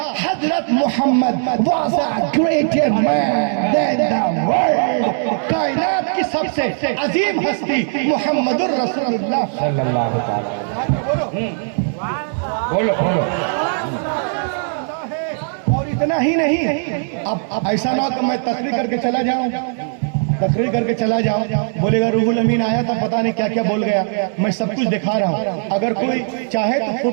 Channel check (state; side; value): silent; left; digital silence